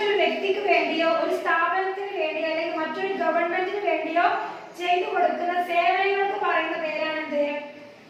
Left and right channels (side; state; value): both; identical; correlation 1.00